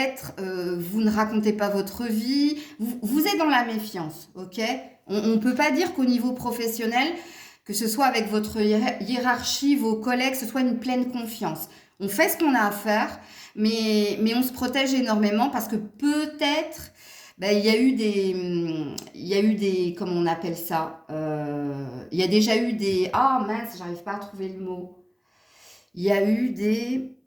vous ne racontez pas votre vie, vous êtes dans la méfiance, ok? On ne peut pas dire qu'au niveau professionnel, que ce soit avec votre hiérarchie, vos collègues, ce soit une pleine confiance. On fait ce qu'on a à faire, mais on se protège énormément parce que peut-être, il y a eu des, comment on appelle ça, il y a déjà eu des, ah mince, j'arrive pas à trouver le mot. Il y a eu des,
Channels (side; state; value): both; identical; correlation 1.00